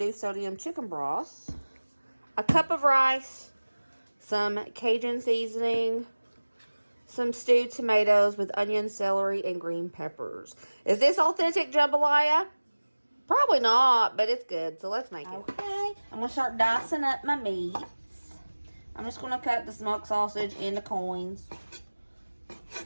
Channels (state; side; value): inverted; both; correlation -1.00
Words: sodium chicken broth. A cup of rice. Some Cajun seasoning. Some stewed tomatoes with onion, celery, and green peppers. Is this authentic jambalaya? Probably not, but it's good, so let's make it. Okay, I'm going to start dicing up my meats. I'm just going to cut the smoked sausage into coins.